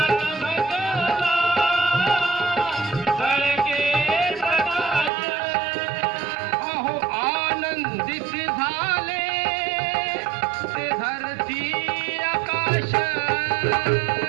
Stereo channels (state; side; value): drops out; left; at 5.1 s